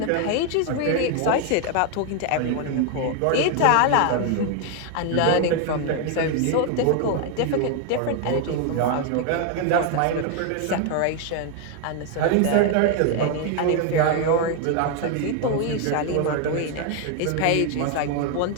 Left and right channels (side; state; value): both; different; correlation 0.01